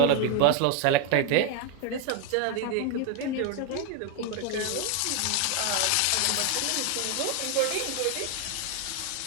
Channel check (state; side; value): different; both; correlation 0.01